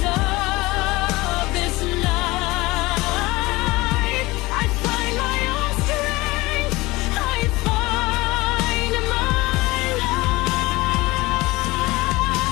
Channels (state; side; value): quieter; right; 21.2 dB